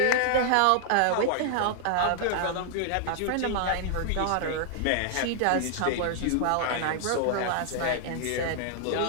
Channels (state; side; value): different; both; correlation 0.00